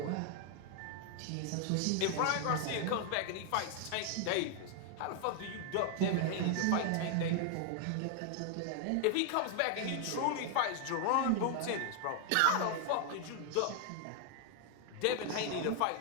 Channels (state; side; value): different; both; correlation 0.00